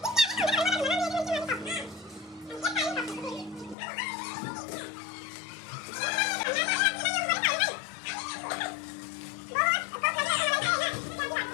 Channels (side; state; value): right; drops out; at 3.8 s